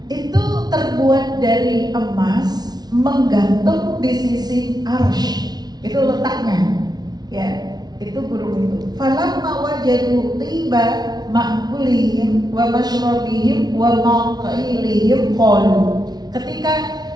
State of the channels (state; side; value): late; left; 0.19 ms